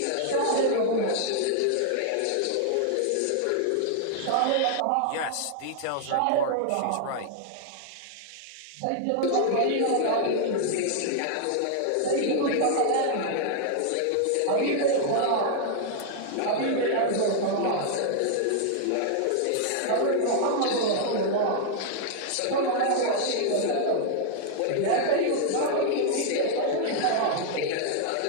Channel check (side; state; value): both; different; correlation 0.00